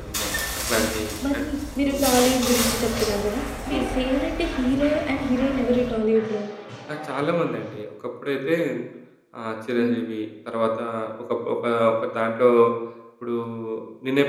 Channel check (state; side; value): identical; both; correlation 1.00